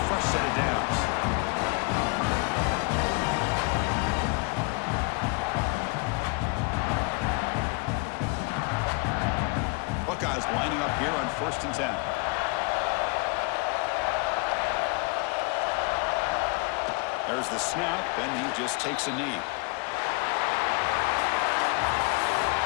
fresh set of downs. Buckeyes lining up here on 1st and 10. There's the snap, and he just takes a knee.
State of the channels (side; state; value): right; quieter; 30.0 dB